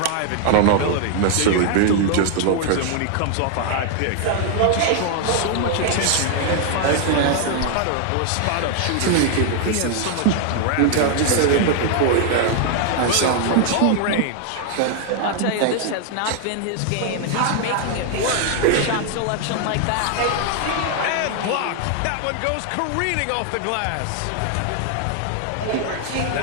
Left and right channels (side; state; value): both; different; correlation 0.00